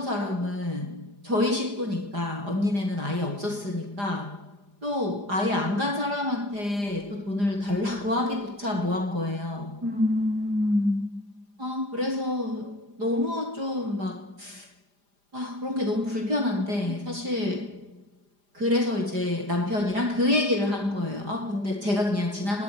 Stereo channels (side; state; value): left; late; 4.9 ms